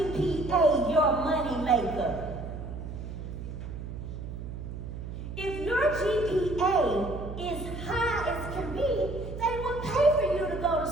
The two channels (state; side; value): noise; right; hum, 8 dB below the sound